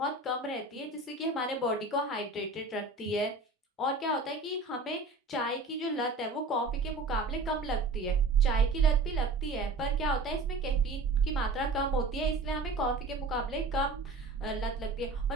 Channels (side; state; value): left; quieter; 3.3 dB